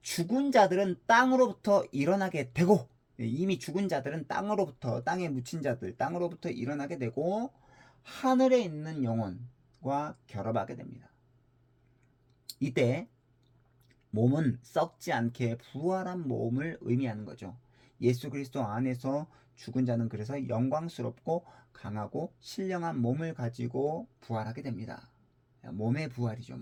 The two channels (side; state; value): both; identical; correlation 1.00